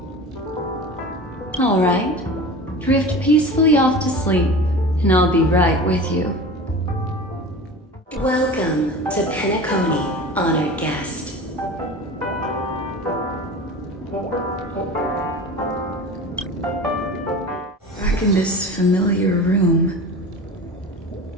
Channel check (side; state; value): both; normal; correlation 0.35